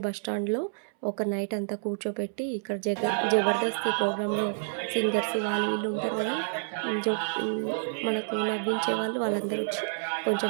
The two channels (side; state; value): left; silent; 59 dB below the other